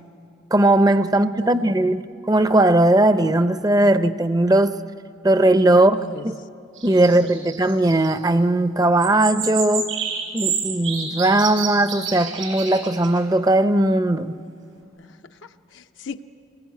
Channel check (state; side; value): normal; both; correlation 0.69